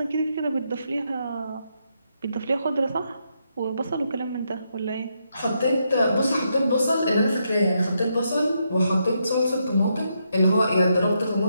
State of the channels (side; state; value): both; inverted; correlation -0.80